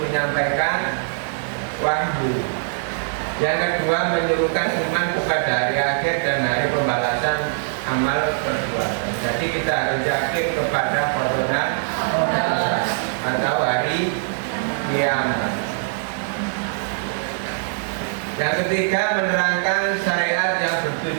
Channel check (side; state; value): left; silent; 64 dB below the other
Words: menyampaikan wahyu. Yang kedua, menyerukan iman kepada hari akhir dan hari pembalasan amal perbuatan. Jadi kita harus yakin kepada qada atau hari kiamat. Yang ketiga, menerangkan syariat yang